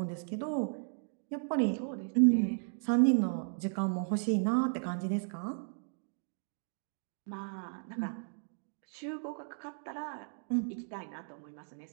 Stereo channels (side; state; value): left; silent; digital silence